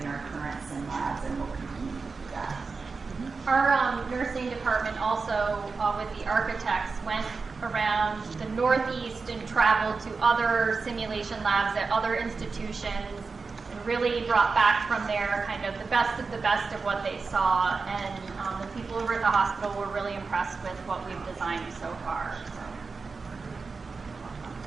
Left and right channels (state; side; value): quieter; left; 4.5 dB